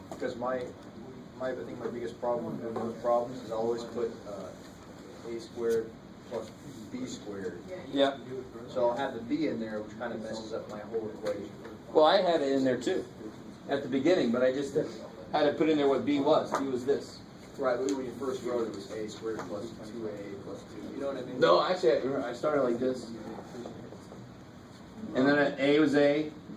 because my I think my biggest problem with those problems is I always put a squared plus b squared. Yeah. So I'll have the b in there, which kind of messes up my whole equation. Well, I had it in there too, at the beginning, but I just had to put in there what b was. B was this. Right, but when you first wrote it was a squared plus 2a plus 2. You know what I mean? No, actually, I started like this. And then a was a,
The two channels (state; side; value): identical; both; correlation 1.00